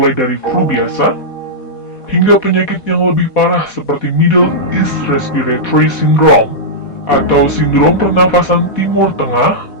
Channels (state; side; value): late; right; 4.2 ms